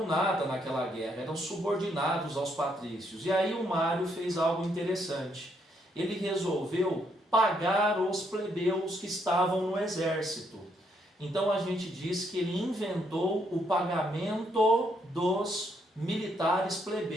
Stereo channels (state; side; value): normal; both; correlation 0.73